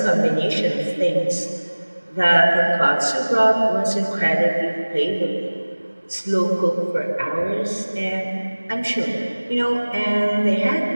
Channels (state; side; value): inverted; both; correlation -1.00